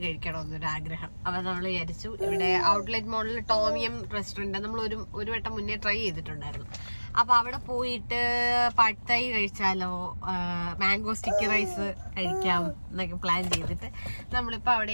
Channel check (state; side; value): inverted; both; correlation -1.00